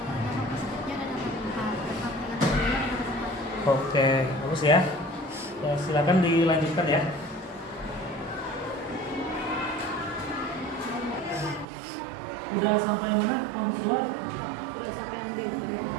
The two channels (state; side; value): drops out; left; at 11.7 s